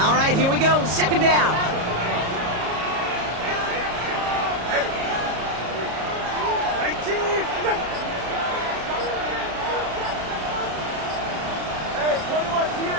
right, here we go. Second down.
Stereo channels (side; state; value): left; late; 33 ms